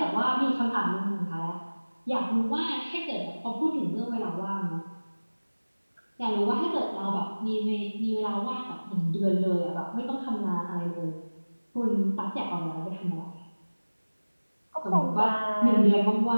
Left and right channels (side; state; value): both; inverted; correlation -1.00